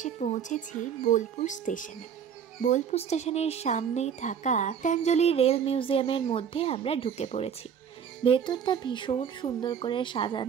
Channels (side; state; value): left; quieter; 7.8 dB